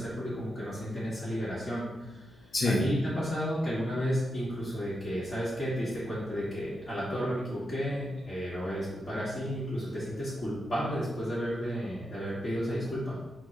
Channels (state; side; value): noise; left; hum, 26 dB below the sound